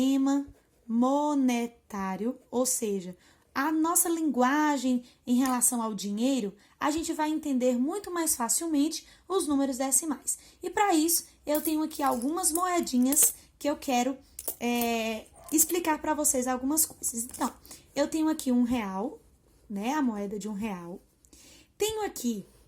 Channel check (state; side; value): identical; both; correlation 1.00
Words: monetário, ou seja, a nossa linguagem em relação ao dinheiro, a gente vai entender muito mais facilmente os números decimais. E para isso, eu tenho aqui algumas moedinhas que eu quero explicar para vocês algumas coisas. Então, eu tenho aqui R$1, né? A moeda de R$1. Tenho aqui